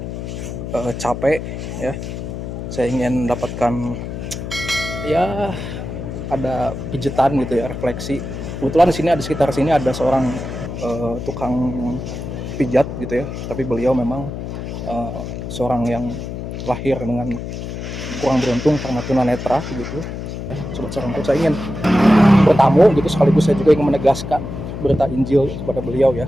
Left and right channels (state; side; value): noise; left; hum, 7 dB below the sound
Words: capek. Ya, saya ingin mendapatkan ya ada pijitan gitu ya, refleksi. Kebetulan di sini ada sekitar sini ada seorang tukang pijat gitu ya, tapi beliau memang seorang yang lahir dengan kurang beruntung karena tunanetra gitu. Sobat Sarangkut, saya ingin bertamu gitu, sekaligus saya juga ingin menegaskan berita Injil kepada beliau ya,